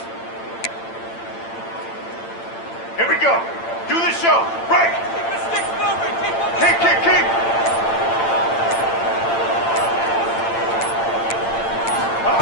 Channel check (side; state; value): right; late; 8.8 ms